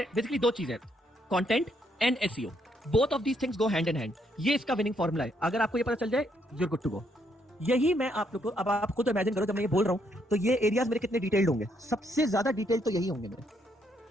बेसिकली दो चीजें, content and SEO, both of these things go hand in hand. ये इसका विनिंग फॉर्मूला है। अगर आपको ये पता चल जाए, you are good to go. यही मैं आप लोग को, अब आप खुद इमेजिन करो, जब मैं ये बोल रहा हूं तो ये एरियाज मेरे कितने डिटेल्ड होंगे, सबसे ज्यादा डिटेल तो यही होंगे मेरे।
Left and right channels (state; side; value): normal; both; correlation 0.73